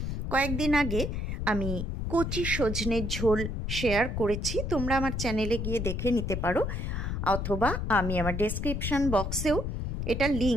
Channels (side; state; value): left; noise; rumble, 3 dB below the sound